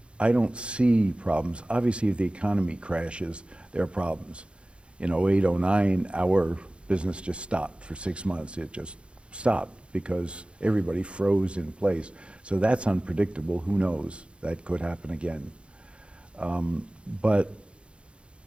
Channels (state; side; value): late; left; 0.057 ms